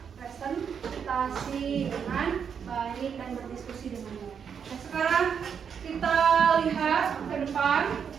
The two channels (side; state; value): left; quieter; 7.2 dB